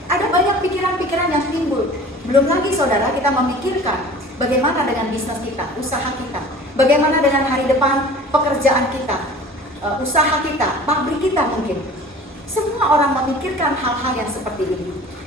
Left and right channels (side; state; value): both; normal; correlation 0.43